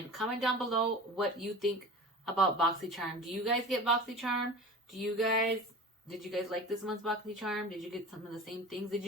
comment down below what you think about BoxyCharm. Do you guys get BoxyCharm? Did you guys like this month's BoxyCharm? Did you get some of the same things? Did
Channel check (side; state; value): both; normal; correlation 0.36